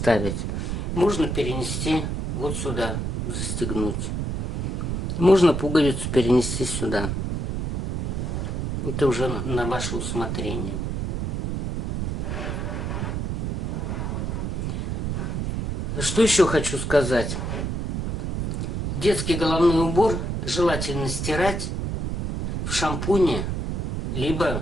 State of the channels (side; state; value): right; noise; rumble, 2 dB below the sound